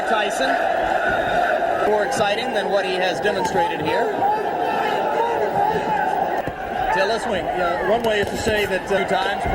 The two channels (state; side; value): identical; both; correlation 1.00